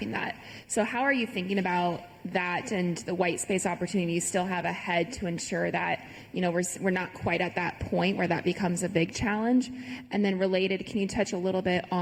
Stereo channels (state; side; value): identical; both; correlation 1.00